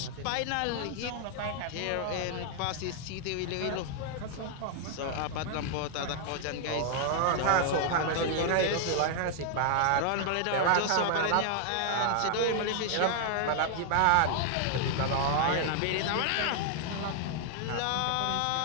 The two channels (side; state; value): both; different; correlation 0.00